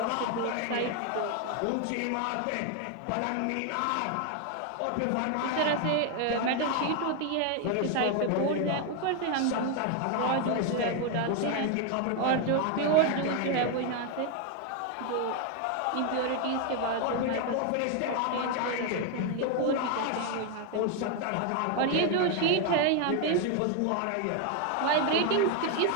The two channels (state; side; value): different; both; correlation 0.01